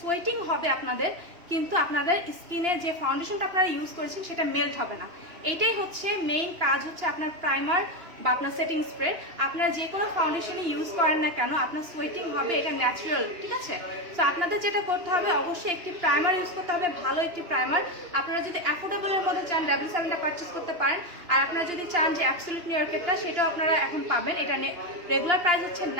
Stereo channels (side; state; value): left; late; 2.9 ms